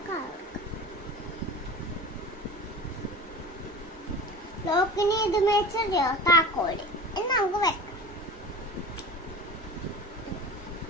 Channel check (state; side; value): normal; both; correlation 0.35